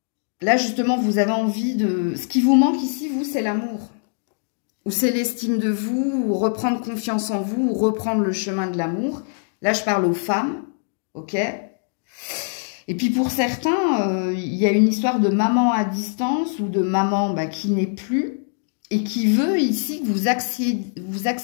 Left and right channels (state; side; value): silent; right; 64 dB below the other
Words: justement, vous avez envie de... Ce qui vous manque ici, vous, c'est l'amour. Ou c'est l'estime de vous, ou reprendre confiance en vous, ou reprendre le chemin de l'amour. Là, je parle aux femmes, ok? Et puis pour certains, il y a une histoire de maman à distance, ou de maman bah, qui n'est plus, et qui veut ici que vous